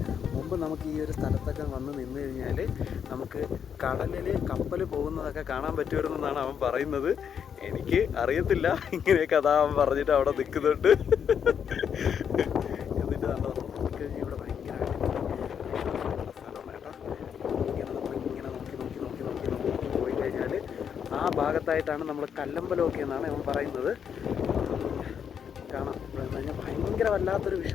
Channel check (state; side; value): quieter; right; 7.7 dB